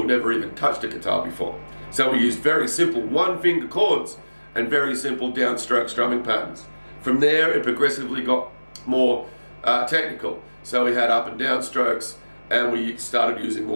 never even touched a guitar before. So we used very simple one-finger chords and very simple downstroke strumming patterns. From there, it progressively got more technical. So we had up and down strokes, and we started using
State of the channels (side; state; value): both; inverted; correlation -1.00